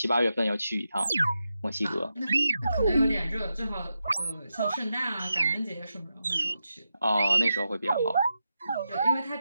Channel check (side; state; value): both; inverted; correlation -0.88